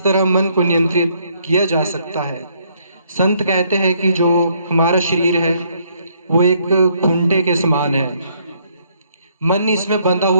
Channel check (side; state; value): both; inverted; correlation -0.68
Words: तरह मन को नियंत्रित किया जा सकता है। संत कहते हैं कि जो हमारा शरीर है वो एक खूंटे के समान है, मन इसमें बंधा